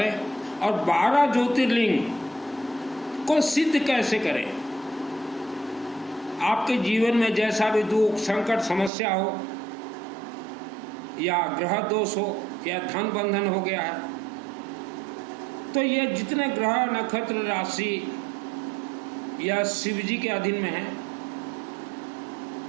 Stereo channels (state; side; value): drops out; left; at 8.9 s